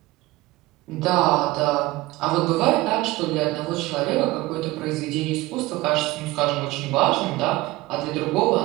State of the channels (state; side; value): quieter; left; 19.5 dB